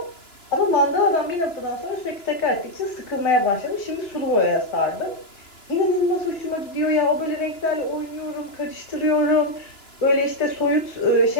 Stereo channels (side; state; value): right; late; 2.9 ms